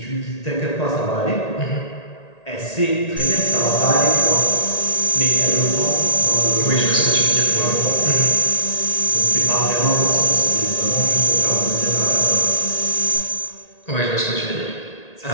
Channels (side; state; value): right; late; 1.8 ms